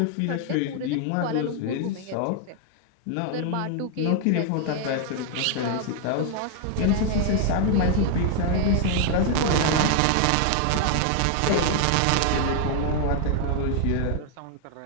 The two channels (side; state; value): both; different; correlation 0.00